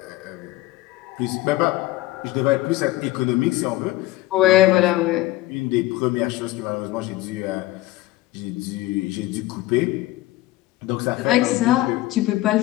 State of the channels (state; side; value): quieter; right; 17.2 dB